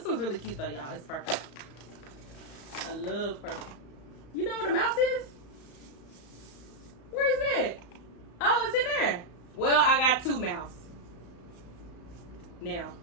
one's really cute though, y'all. It's purple. I love purple. You know what a mouse is? Where is it at? Oh, it's in there. Well, I got 2 mouse now,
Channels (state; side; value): late; right; 35 ms